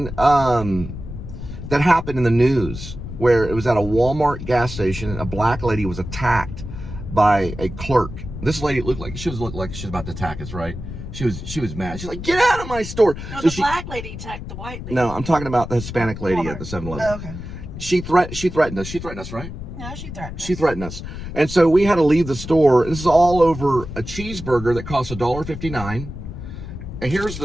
that happened in the news where it was at a Walmart gas station and a black lady was attacked by a clerk. This lady looked like she was about to attack us, right? She was mad. She's like, "Get out of my store!" No, so the black lady attacked the white lady. No, I'm talking about the Hispanic lady Walmart. At the 7-Eleven. Oh, okay. She threatened us. She threatened us, right? No, she threatened us. She threatened us, and so we had to leave the store. This is all over a cheeseburger that costs $1.59. And here's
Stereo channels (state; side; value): noise; left; rumble, 9 dB below the sound